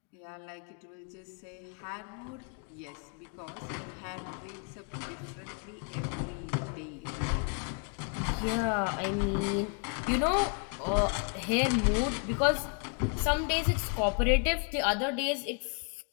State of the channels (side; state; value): right; quieter; 39.2 dB